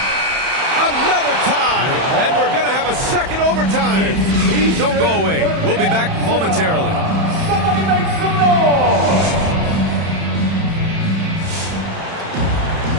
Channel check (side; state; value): left; late; 31 ms